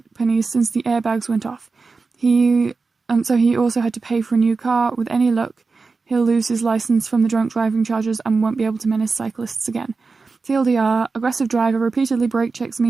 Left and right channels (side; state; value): left; quieter; 4.3 dB